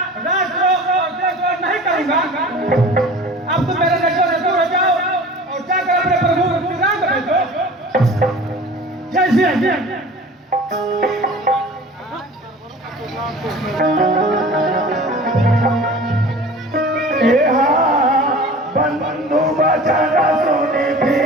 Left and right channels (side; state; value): both; normal; correlation 0.41